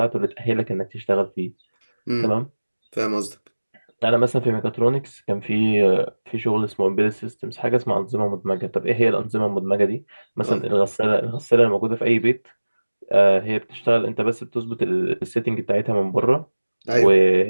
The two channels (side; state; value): both; inverted; correlation -1.00